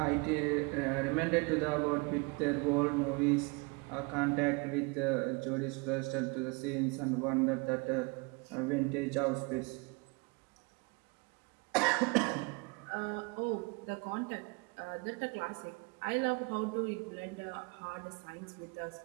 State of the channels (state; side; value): quieter; left; 29.6 dB